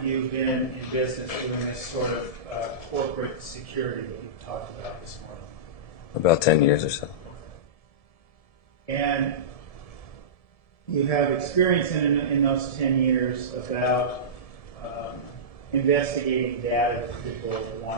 you been in business doing this sort of corporate security that you've talked about this morning? About 10 years or so. And you have experience in those 10 years about investigating data that people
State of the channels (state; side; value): late; right; 1.7 ms